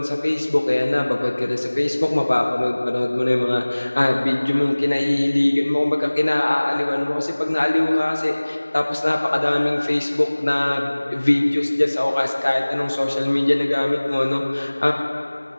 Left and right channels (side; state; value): both; inverted; correlation -1.00